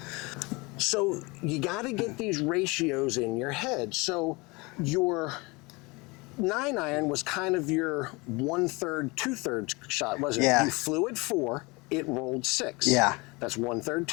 So you got to get these ratios in your head. So your 9-iron was kind of your 1/3, 2/3 shot, wasn't Yeah. it? You flew at 4, it rolled 6. Yeah. That's 1/3,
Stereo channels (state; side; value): quieter; right; 25.8 dB